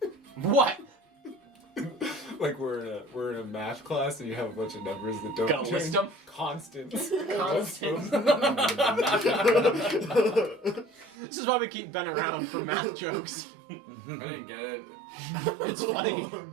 What? Like we're in a math class and you have a bunch of numbers that don't Gotta list change. them? Constants. Constance. This is why we keep Ben around for math jokes. I didn't get it. It's funny. Oh,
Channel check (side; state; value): left; drops out; at 11.2 s